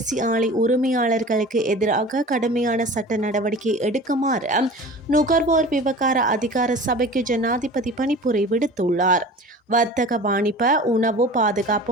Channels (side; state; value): both; normal; correlation 0.39